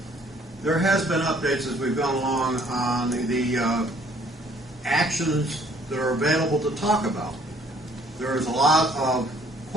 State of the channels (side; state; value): both; normal; correlation 0.60